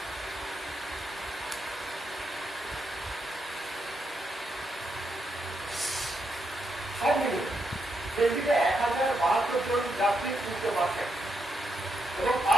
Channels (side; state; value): both; normal; correlation 0.81